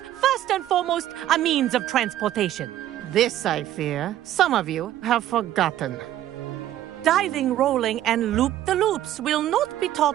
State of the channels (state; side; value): quieter; left; 12.7 dB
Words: first and foremost, a means of transportation. This, I fear, some of you have forgotten. Diving, rolling, and loop-the-loops will not be